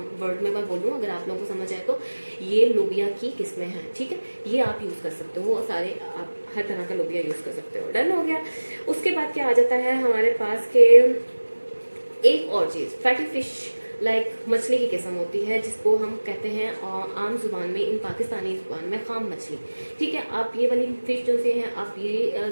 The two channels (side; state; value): both; inverted; correlation -1.00